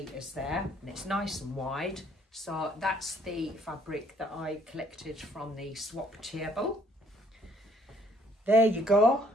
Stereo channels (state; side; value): normal; both; correlation 0.63